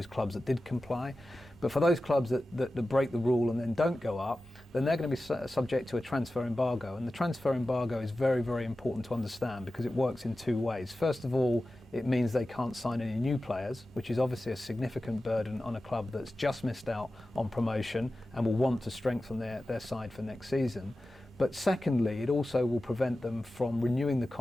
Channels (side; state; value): both; normal; correlation 0.94